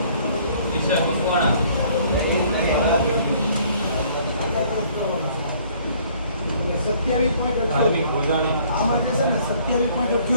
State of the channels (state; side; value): inverted; both; correlation -0.59